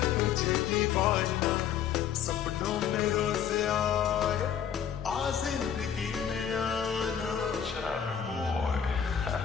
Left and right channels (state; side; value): quieter; right; 8.5 dB